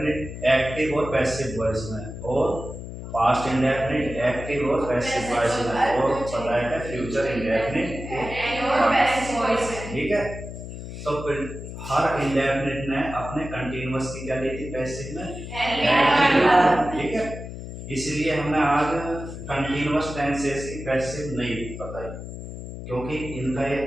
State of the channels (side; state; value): left; noise; hum, 9 dB below the sound